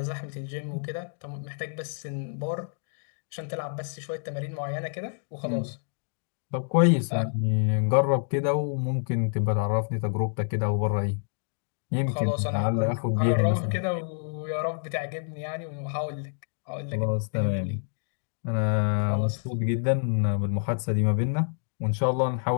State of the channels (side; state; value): right; silent; digital silence